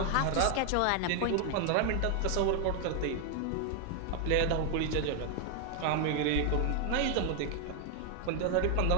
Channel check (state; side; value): different; both; correlation 0.00